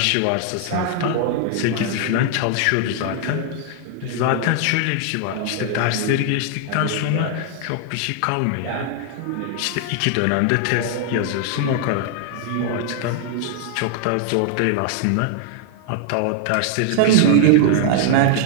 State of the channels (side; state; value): both; different; correlation 0.00